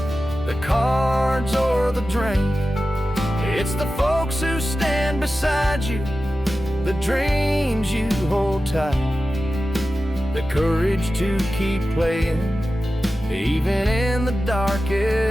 the cards or the drink. It's the folks who stand beside you, the dreams you hold tight, the courage to keep playing even in the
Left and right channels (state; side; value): normal; both; correlation 0.94